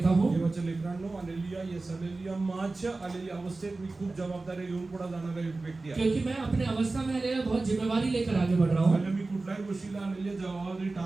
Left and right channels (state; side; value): quieter; left; 3.4 dB